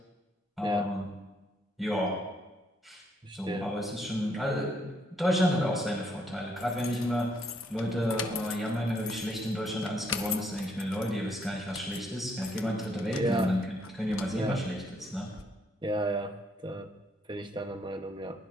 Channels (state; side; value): normal; both; correlation 0.70